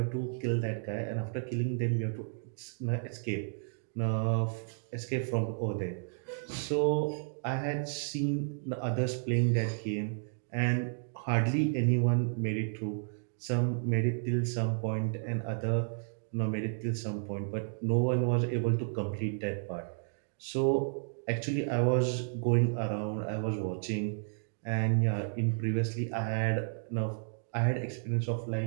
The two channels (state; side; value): silent; left; digital silence